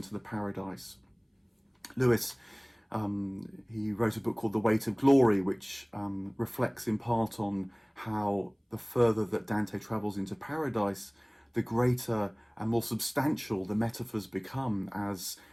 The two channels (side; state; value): both; identical; correlation 1.00